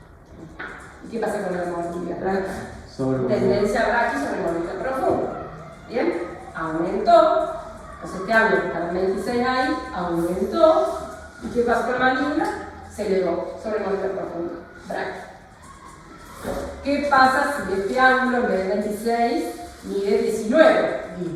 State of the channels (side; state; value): both; identical; correlation 1.00